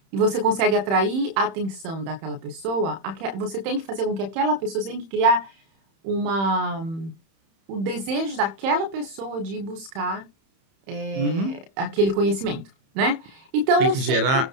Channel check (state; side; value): late; left; 31 ms